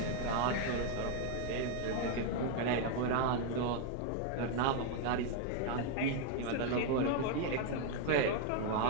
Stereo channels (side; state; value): both; different; correlation 0.01